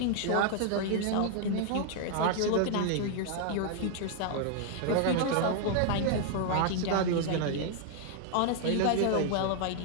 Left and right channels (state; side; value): different; both; correlation 0.00